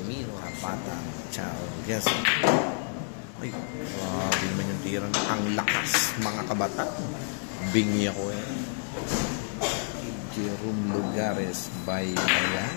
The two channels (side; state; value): right; silent; 58 dB below the other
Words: Mino Pata Chao. Yes. Ay, grabe na yung tira na. Ang lakas, mga kabata. Bingi ako eh. Jerome Lugares by